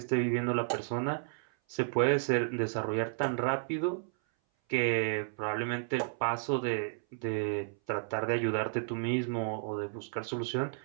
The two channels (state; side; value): silent; left; 56 dB below the other